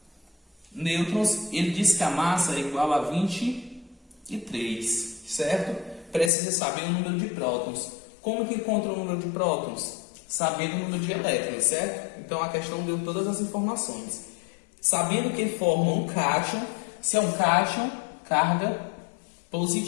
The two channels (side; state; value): right; drops out; at 6.3 s